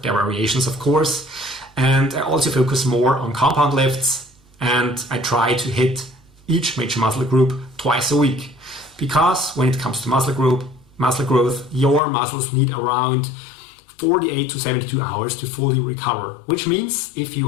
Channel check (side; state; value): right; drops out; at 12.0 s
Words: their variations, of course. And I also focus more on compound lifts, and I try to hit each major muscle group twice a week. Because when it comes to muscle growth, your muscles need around 48 to 72 hours to fully recover, which means if